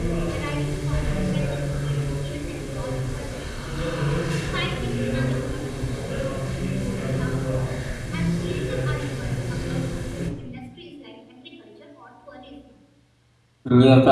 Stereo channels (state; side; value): identical; both; correlation 1.00